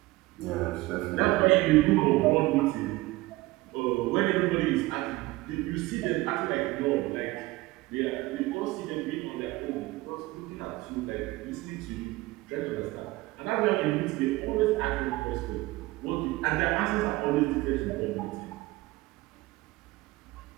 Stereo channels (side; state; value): left; quieter; 19.9 dB